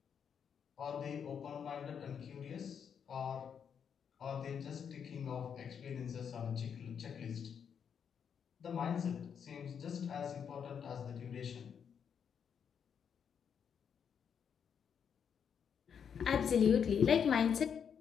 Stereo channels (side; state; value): right; quieter; 7.4 dB